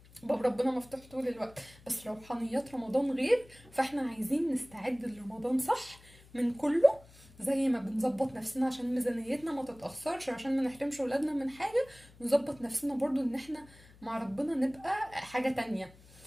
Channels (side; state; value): left; noise; hum, 24 dB below the sound